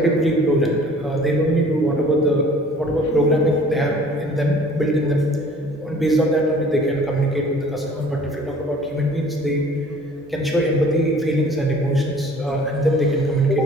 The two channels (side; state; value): both; normal; correlation 0.51